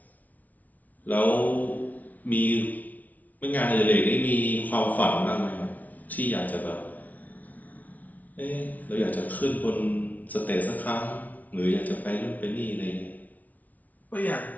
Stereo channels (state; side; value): late; right; 0.074 ms